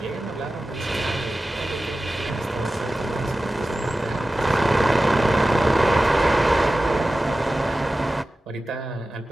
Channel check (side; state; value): both; normal; correlation 0.95